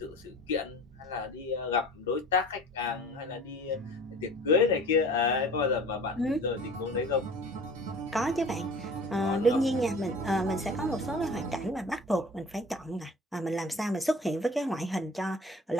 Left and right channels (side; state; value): both; normal; correlation 0.43